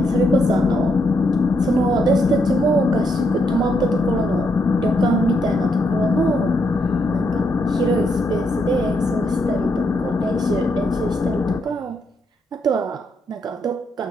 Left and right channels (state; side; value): normal; both; correlation 0.77